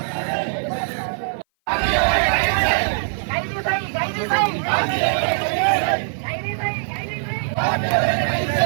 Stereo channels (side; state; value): left; silent; 57 dB below the other